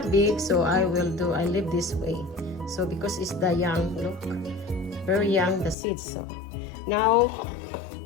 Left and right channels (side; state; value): right; drops out; at 5.8 s